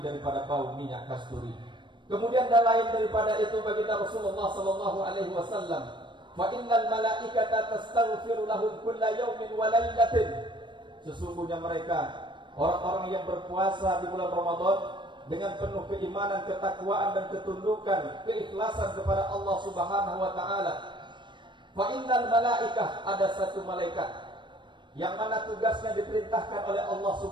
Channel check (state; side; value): late; left; 0.23 ms